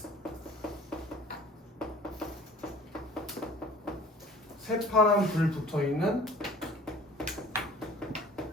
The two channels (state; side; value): normal; both; correlation 0.48